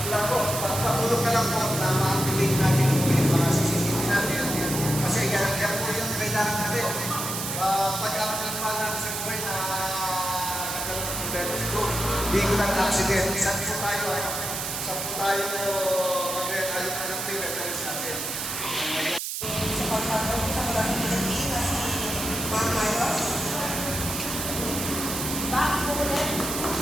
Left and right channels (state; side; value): noise; right; hiss, 4 dB below the sound